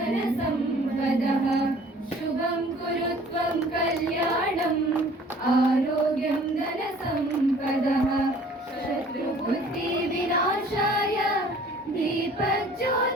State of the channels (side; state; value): both; normal; correlation 0.52